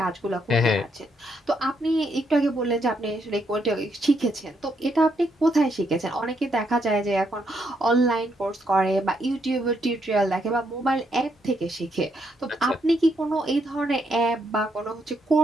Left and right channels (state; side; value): normal; both; correlation 0.76